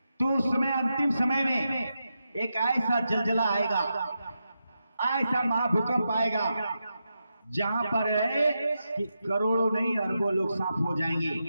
तो उस समय अंतिम समय में एक ऐसा जलजला आएगा, ऐसा महाभूकंप आएगा, जहां पर है कि करोड़ों नहीं अरबों लोग साफ हो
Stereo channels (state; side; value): inverted; both; correlation -0.87